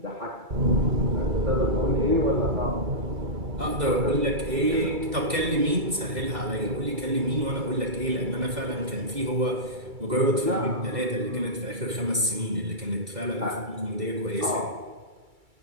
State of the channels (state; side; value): late; left; 2.3 ms